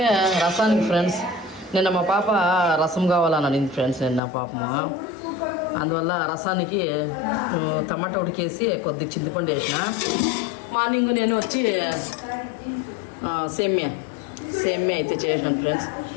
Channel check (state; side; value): drops out; right; at 4.2 s